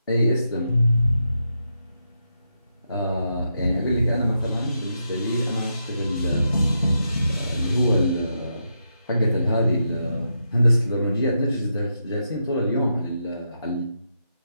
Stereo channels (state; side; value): inverted; both; correlation -0.84